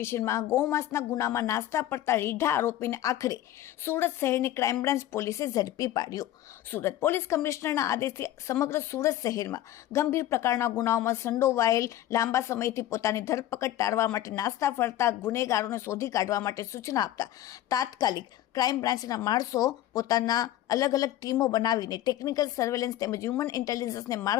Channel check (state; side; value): quieter; right; 13.3 dB